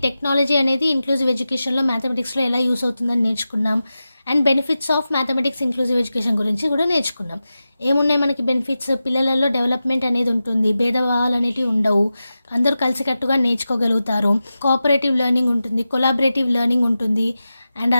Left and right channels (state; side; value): inverted; both; correlation -0.93